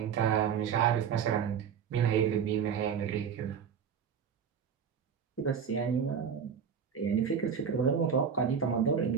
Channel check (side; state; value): left; quieter; 7.3 dB